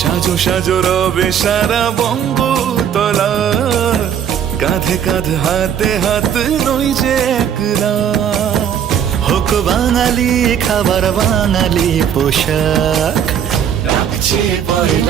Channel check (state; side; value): quieter; left; 8.8 dB